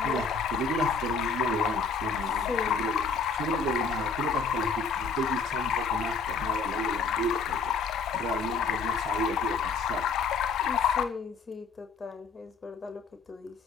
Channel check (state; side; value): quieter; right; 4.7 dB